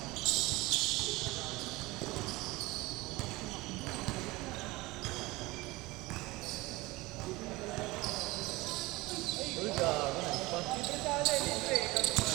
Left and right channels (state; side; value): quieter; left; 21.2 dB